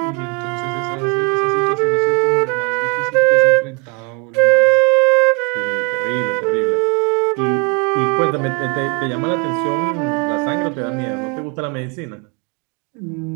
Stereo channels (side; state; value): left; quieter; 32.6 dB